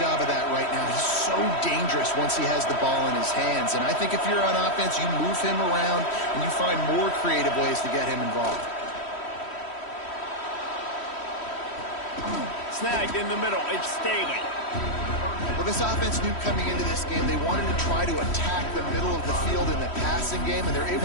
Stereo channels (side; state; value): right; late; 3.1 ms